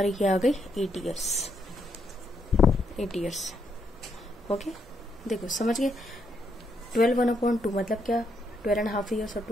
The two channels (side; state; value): both; normal; correlation 0.77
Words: क्या आ गई, 8 ईयर्स। ओके, देखो समझ गए। 12/1/2 मतलब क्या, 12.5 ईयर्स, और